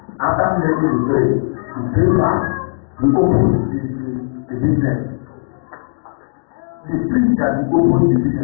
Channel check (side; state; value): right; silent; 59 dB below the other